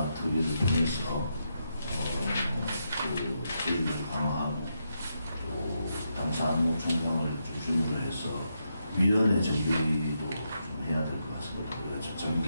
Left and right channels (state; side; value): inverted; both; correlation -0.83